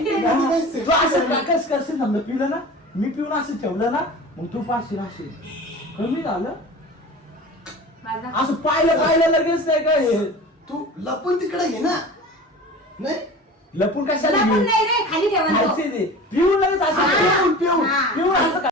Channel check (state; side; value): normal; both; correlation 0.37